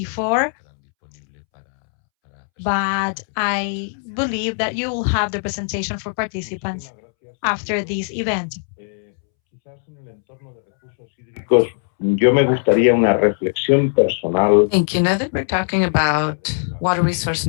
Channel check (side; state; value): right; silent; 66 dB below the other